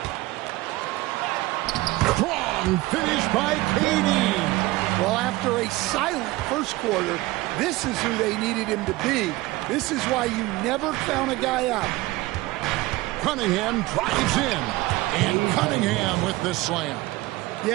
Strong finish by KD. Well, after a silent first quarter, this is who they needed him to be. This is why you never count a guy out. Cunningham drives in. And Cunningham with the slam.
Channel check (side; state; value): left; quieter; 19.6 dB